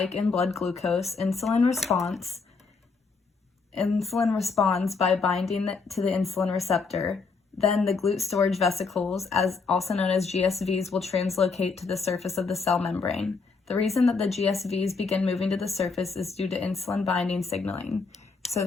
in blood glucose, insulin responds by binding to the insulin receptor. Then the GLUT storage vesicles, also known as GSVs, will translocate to the surface of the cell membrane. The reason that the GSVs begin moving to the surface is due to insulin binding signaling.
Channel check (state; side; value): quieter; right; 4.6 dB